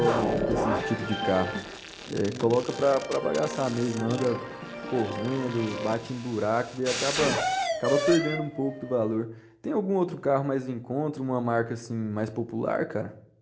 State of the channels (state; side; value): identical; both; correlation 1.00